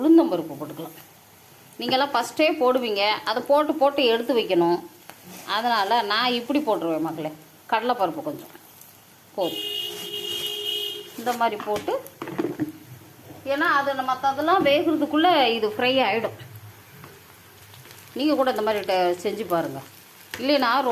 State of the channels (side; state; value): both; identical; correlation 1.00